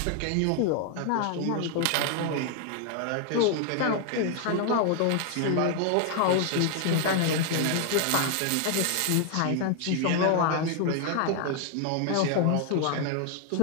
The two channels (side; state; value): both; different; correlation 0.00